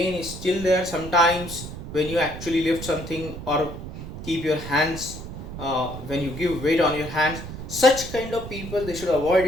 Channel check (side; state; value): right; noise; rumble, 10 dB below the sound